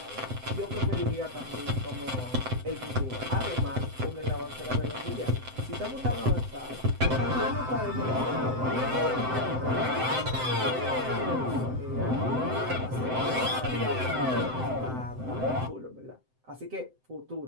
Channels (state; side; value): late; left; 7.8 ms